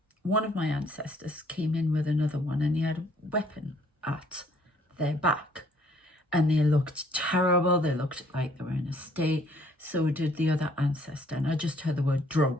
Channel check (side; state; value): both; normal; correlation 0.62